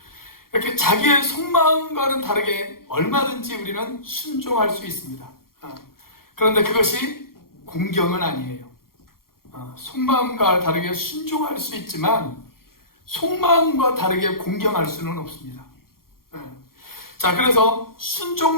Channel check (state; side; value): late; right; 0.92 ms